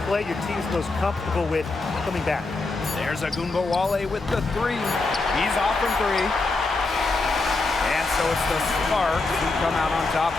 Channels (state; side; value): quieter; right; 3.5 dB